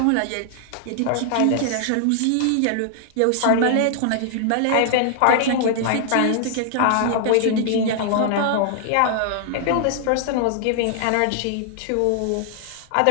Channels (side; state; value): both; different; correlation -0.01